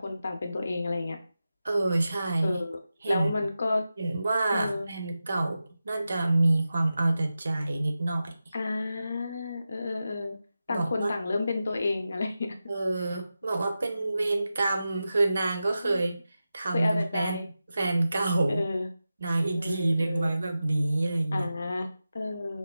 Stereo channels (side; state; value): both; inverted; correlation -0.92